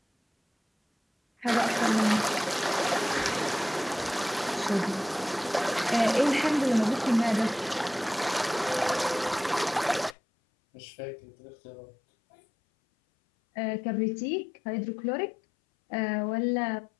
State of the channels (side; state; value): right; drops out; at 10.2 s